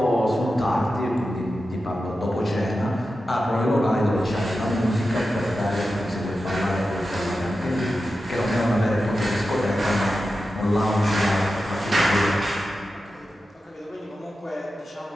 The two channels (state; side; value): normal; both; correlation 0.92